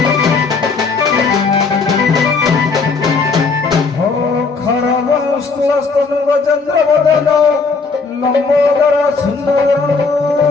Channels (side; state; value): right; quieter; 4.5 dB